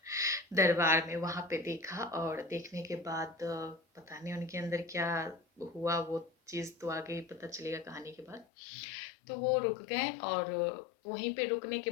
दरबार में, वहाँ पे देखा, और देखने के बाद पता नहीं उनके अंदर क्या हुआ, वो चीज़ तो आगे ही पता चलेगा कहानी के बाद। तो वो रुक गए, और वहीं पे रुकने के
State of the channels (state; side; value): drops out; right; at 8.5 s